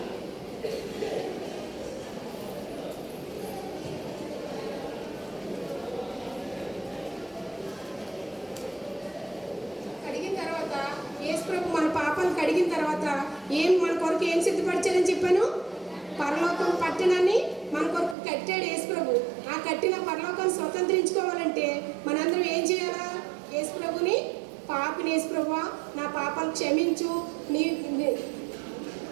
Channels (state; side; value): drops out; left; at 18.2 s